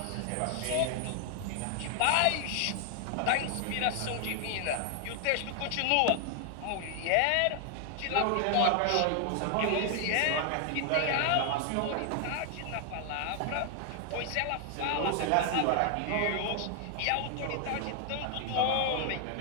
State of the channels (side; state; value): both; different; correlation 0.00